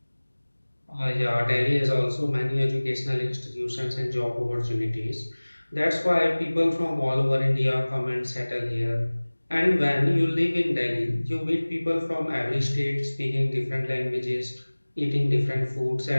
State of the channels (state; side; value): inverted; both; correlation -1.00